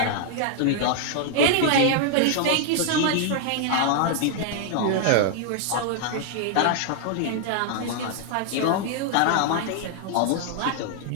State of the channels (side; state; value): both; different; correlation 0.00